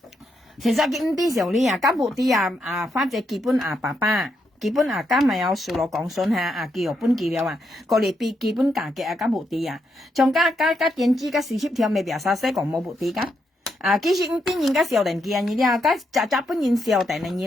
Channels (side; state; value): both; normal; correlation 0.80